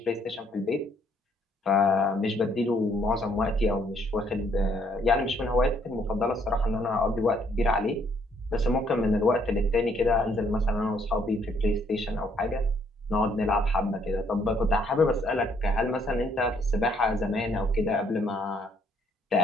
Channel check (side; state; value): both; normal; correlation 0.67